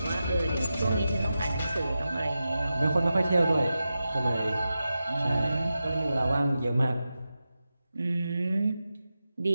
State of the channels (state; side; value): inverted; both; correlation -0.92